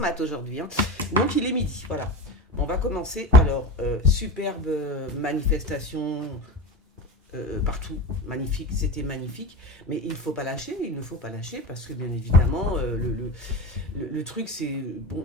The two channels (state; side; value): normal; both; correlation 0.26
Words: aujourd'hui, hein. Donc il est midi. Voilà. On va commencer. Alors, superbe manifestation. Partout, magnifique, c'était magnifique, mais il ne faut pas lâcher, parce que bien évidemment, le truc c'est, bon,